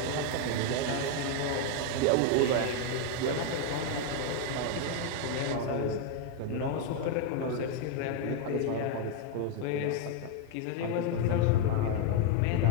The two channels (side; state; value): both; different; correlation 0.01